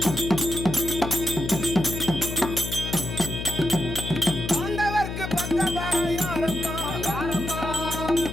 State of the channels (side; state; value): left; noise; hum, 6 dB below the sound